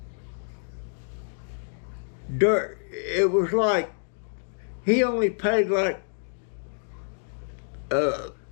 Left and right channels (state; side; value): silent; right; digital silence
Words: It was like, he only paid like